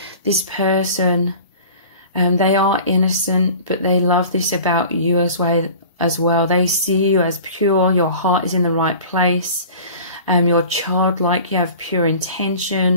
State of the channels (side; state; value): both; inverted; correlation -0.43